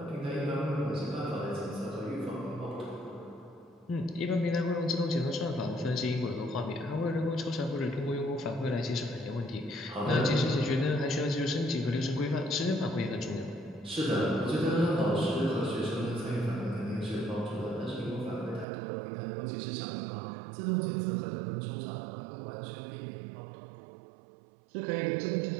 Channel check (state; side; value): drops out; left; at 18.7 s